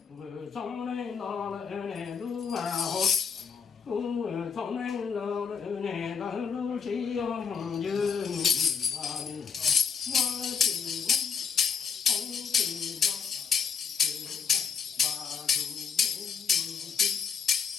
vừa sống lên lo lại nè lú vào cũng vừa sống lên lo lại nè lo lú chỉ hồng dương Hãy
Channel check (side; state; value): right; quieter; 6.4 dB